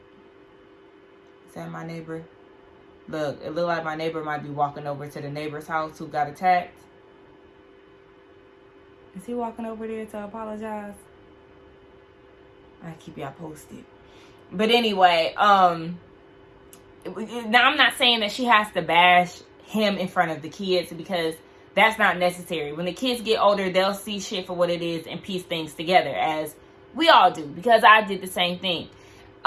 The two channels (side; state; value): both; identical; correlation 1.00